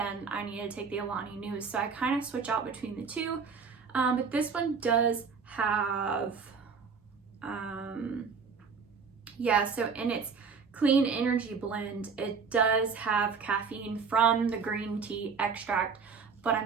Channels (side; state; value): left; quieter; 5.5 dB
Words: I need to take the Alani Nu. So I kind of switch out between the two, but this one does have, so in its clean energy blend, it does have caffeine from the green tea extract, but